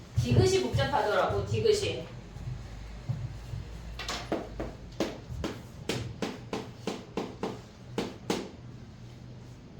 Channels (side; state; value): both; identical; correlation 1.00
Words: 디귿이 복잡하더라고. 디귿이.